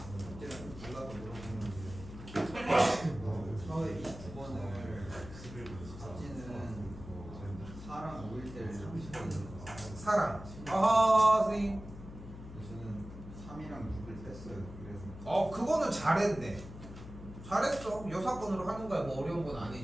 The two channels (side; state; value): left; noise; hum, 13 dB below the sound